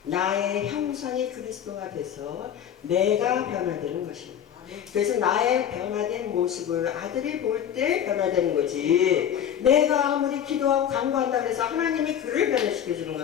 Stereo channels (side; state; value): right; quieter; 9.5 dB